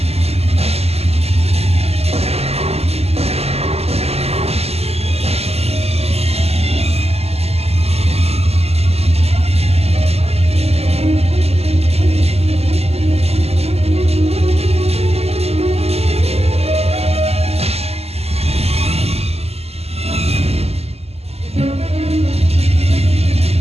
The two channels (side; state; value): left; late; 0.29 ms